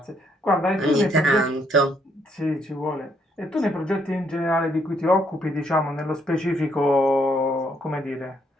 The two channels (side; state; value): both; normal; correlation 0.71